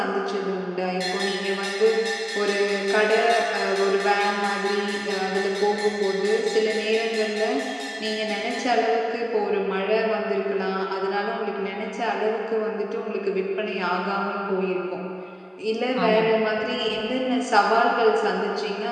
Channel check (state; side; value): identical; both; correlation 1.00